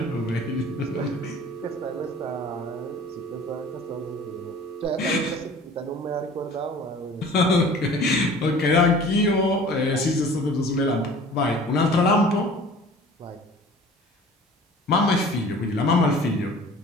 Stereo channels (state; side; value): normal; both; correlation 0.45